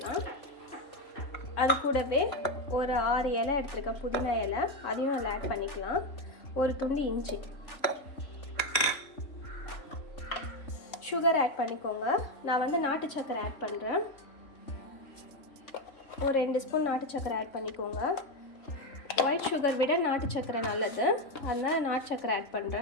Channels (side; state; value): right; late; 3.6 ms